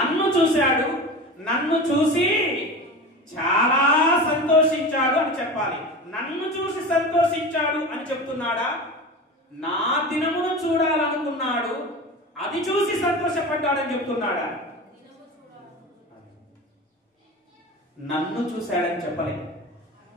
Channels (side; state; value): both; normal; correlation 0.30